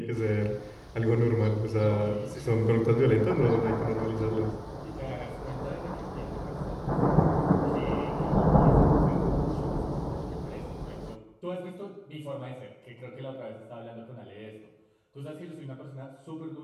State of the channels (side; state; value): both; identical; correlation 1.00